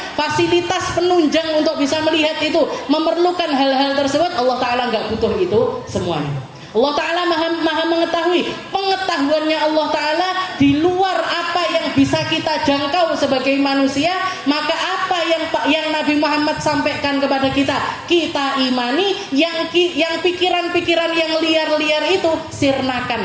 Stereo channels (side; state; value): both; identical; correlation 1.00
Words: Fasilitas penunjang untuk bisa melihat itu memerlukan hal-hal tersebut, Allah Ta'ala nggak butuh itu semuanya. Allah Ta'ala maha mengetahui, pengetahuannya Allah Ta'ala di luar apa yang bisa kita jangkau sebagai manusia. Maka apa yang Nabi Muhammad sampaikan kepada kita imani. Yang pikiran-pikiran yang liar-liar itu